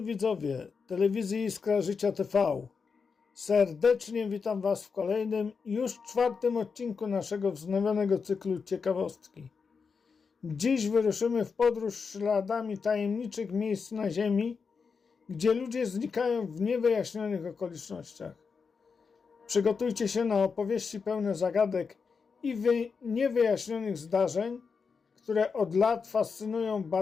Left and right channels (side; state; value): right; quieter; 5.4 dB